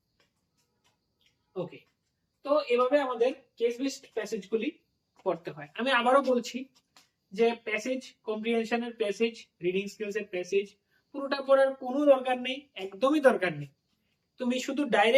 ওকে, তো এভাবে আমাদের কেস বেসড প্যাসেজগুলি পড়তে হয়। আমি আবারও বলছি যে প্যাসেজ কম্প্রিহেনশনের প্যাসেজ, রিডিং স্কিলসের প্যাসেজ পুরোটা পড়ার কোনো দরকার নেই, একদমই দরকার নেই। তুমি শুধু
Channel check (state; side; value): identical; both; correlation 1.00